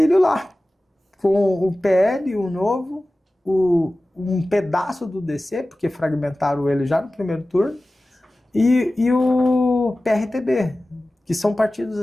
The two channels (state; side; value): normal; both; correlation 0.96